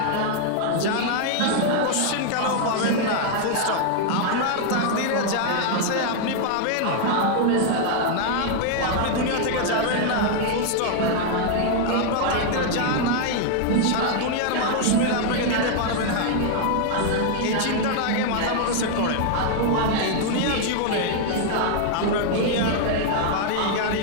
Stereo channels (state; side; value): different; both; correlation 0.00